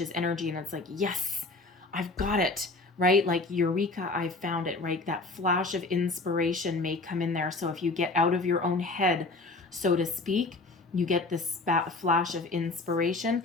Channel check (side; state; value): right; quieter; 3.3 dB